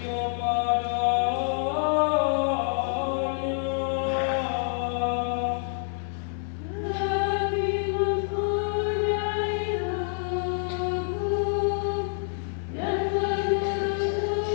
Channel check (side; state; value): right; silent; digital silence